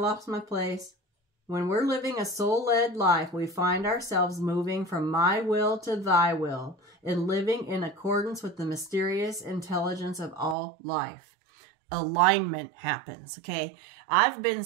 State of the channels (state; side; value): drops out; left; at 10.6 s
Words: my place. When we're living a soul-led life, we find ourselves moving from my will to thy will and living in accordance with the mysterious intelligence of all life. Alignment happens, okay? I've been